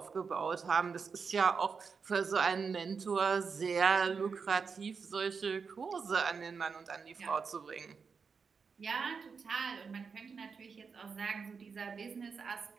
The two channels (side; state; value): left; quieter; 5.5 dB